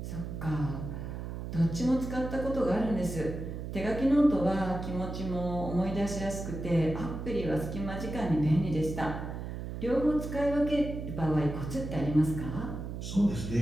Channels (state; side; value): noise; right; hum, 7 dB below the sound